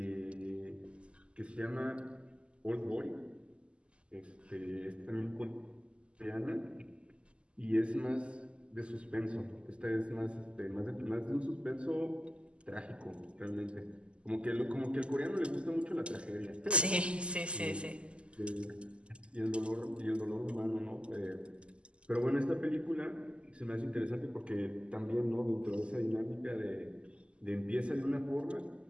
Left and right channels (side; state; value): left; late; 0.052 ms